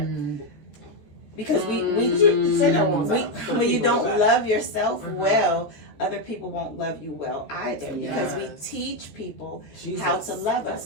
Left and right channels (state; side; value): late; right; 14 ms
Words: Because when you don't love yourself well, other people won't love you well either, because we teach people how to love us.